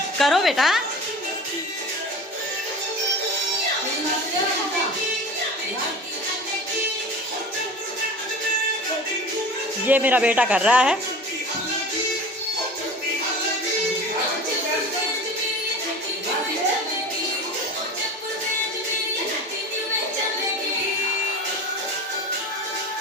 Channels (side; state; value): both; normal; correlation 0.36